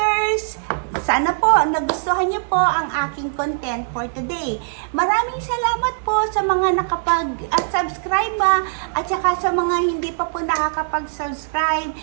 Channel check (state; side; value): silent; left; digital silence